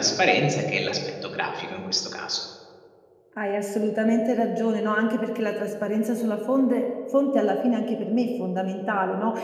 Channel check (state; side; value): identical; both; correlation 1.00